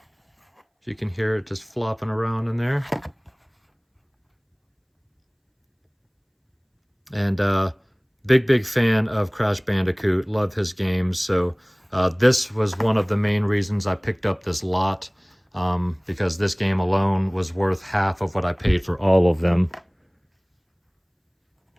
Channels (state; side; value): identical; both; correlation 1.00